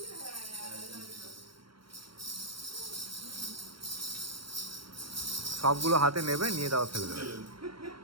সবগুলো হাতে নেবে, নিয়ে দাও ফেলে দেবে।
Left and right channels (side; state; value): left; late; 0.73 ms